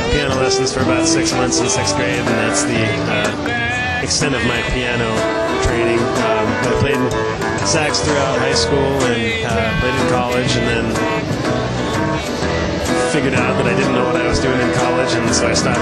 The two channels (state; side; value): identical; both; correlation 1.00